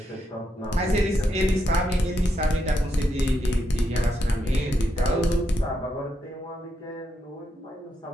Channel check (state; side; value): normal; both; correlation 0.81